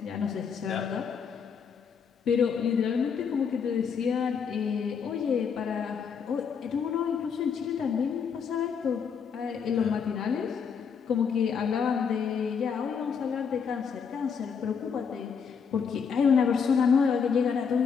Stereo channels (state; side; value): quieter; right; 6.5 dB